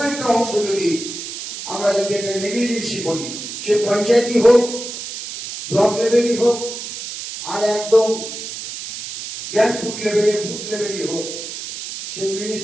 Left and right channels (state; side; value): noise; right; hiss, 8 dB below the sound